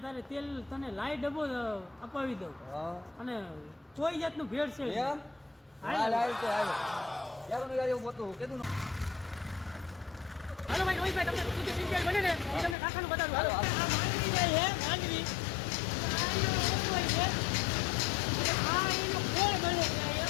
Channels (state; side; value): drops out; right; at 12.8 s